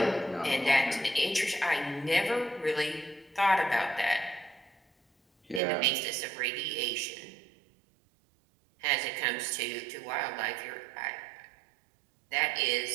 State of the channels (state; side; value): drops out; left; at 5.6 s